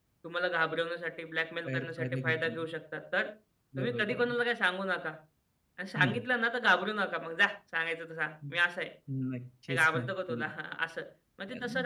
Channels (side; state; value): both; identical; correlation 1.00